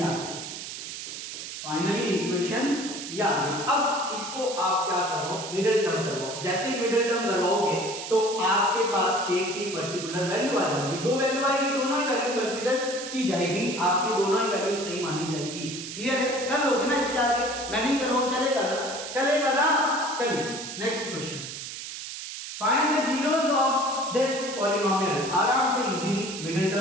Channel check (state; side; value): noise; right; hiss, 8 dB below the sound